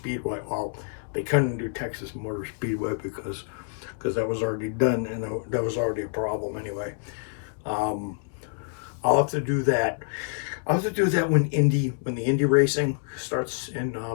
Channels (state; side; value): silent; right; digital silence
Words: well, they couldn't do Texas Motor Speedway because that was already done, and that was already a problem anyway. I'll have to do that. I'll have to do that when the Indy racing starts, and